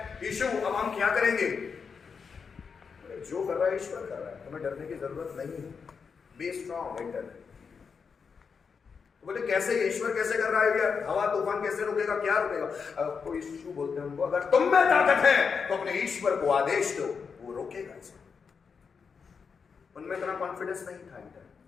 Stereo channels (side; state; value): right; quieter; 5.8 dB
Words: यीशु अब हम क्या करेंगे? जो कर रहा है ईश्वर कर रहा है, हमें डरने की जरूरत नहीं है। Be strong internally. बोले कैसे, ईश्वर कैसे कर रहा है यार? हवा तूफान कैसे रुकेगा, क्या रुकेगा? तो यीशु बोलते हैं उनको, अगर तुम में ताकत है तो अपने ईश्वर को आदेश दो, वो रोकेगा इसको। उनमें इतना कॉन्फिडेंस नहीं था इंटर,